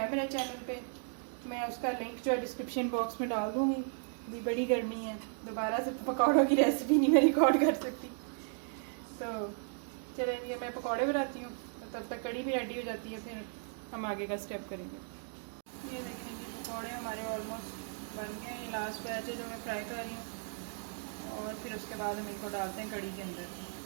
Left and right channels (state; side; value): silent; left; 54 dB below the other